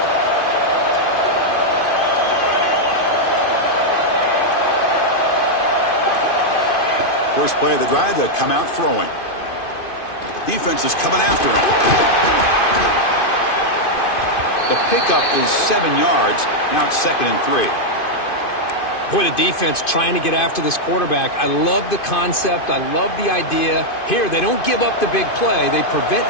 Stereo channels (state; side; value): late; right; 2.5 ms